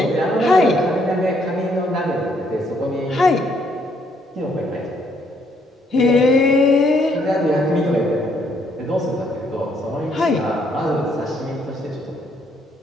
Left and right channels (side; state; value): both; normal; correlation 0.70